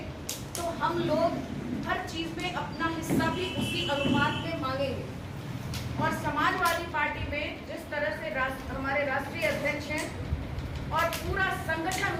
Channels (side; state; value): both; identical; correlation 1.00